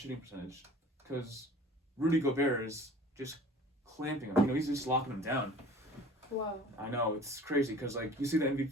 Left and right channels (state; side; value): normal; both; correlation 0.45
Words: percentage because Rudy Gobert is just clamping him. He's just locking him down. Wow. I know, it's crazy because like you see the